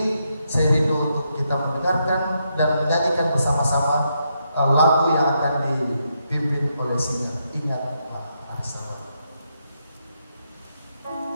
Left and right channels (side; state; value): both; inverted; correlation -0.80